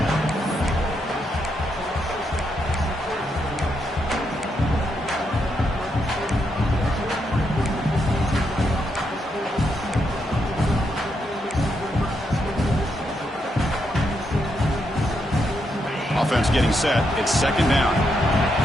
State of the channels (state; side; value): normal; both; correlation 0.80